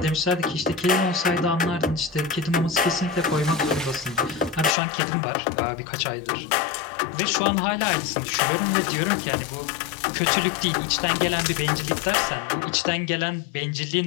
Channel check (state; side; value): drops out; right; at 4.8 s